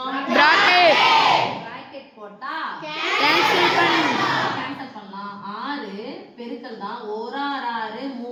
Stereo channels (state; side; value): identical; both; correlation 1.00